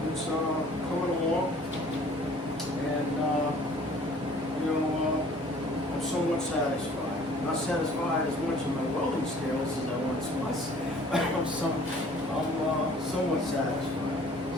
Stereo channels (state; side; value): normal; both; correlation 0.53